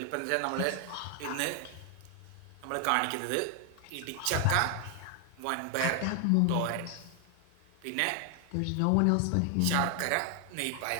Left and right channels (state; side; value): different; both; correlation 0.00